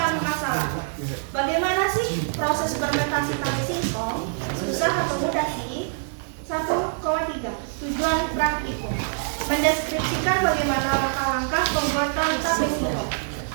masalah. Bagaimana sih proses fermentasi tape singkong? Susah atau mudah sih? 1,3 Tujuan praktikum. Mendeskripsikan bagaimana langkah-langkah pembuatan tape singkong.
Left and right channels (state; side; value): silent; left; 57 dB below the other